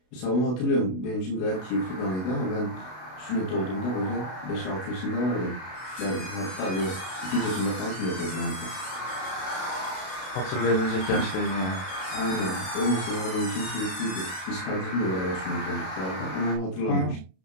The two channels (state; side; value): late; right; 32 ms